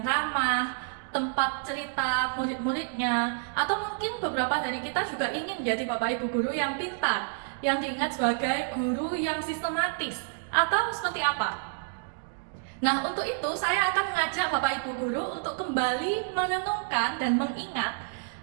ramah, tempat cerita murid-muridnya, atau mungkin beberapa dari kita juga ingin menjadi Bapak Ibu Guru yang pintar, yang diingat sebagai guru yang sistematis, atau seperti apa? Nah, untuk itu saya akan mengajak Bapak Ibu Guru untuk kembali merenungkan dan mengingat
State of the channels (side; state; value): left; silent; digital silence